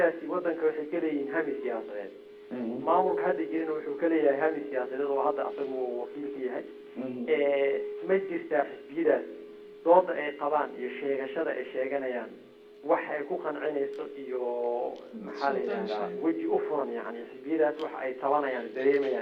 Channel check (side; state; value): both; identical; correlation 1.00